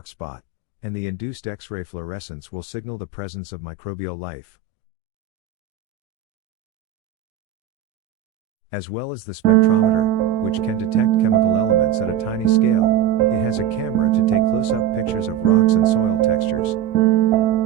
spot, and the induced X-ray fluorescence will signal the presence of microbial life. As well as the spectrometer, which can detect chemical elements at a tiny scale, it has a camera to take close-up pictures of rocks and soil textures.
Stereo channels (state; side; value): quieter; left; 9.4 dB